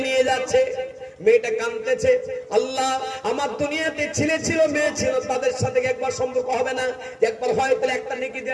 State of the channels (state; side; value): identical; both; correlation 1.00